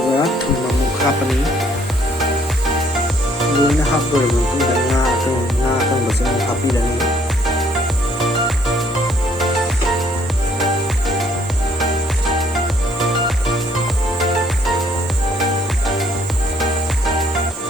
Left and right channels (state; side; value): normal; both; correlation 0.64